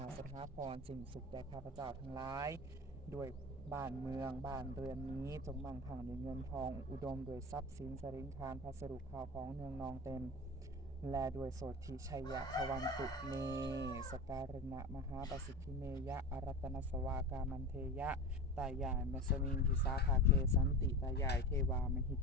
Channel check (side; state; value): both; normal; correlation 0.30